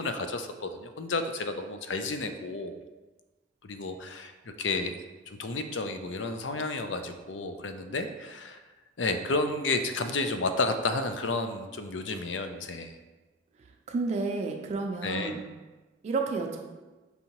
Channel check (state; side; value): normal; both; correlation 0.09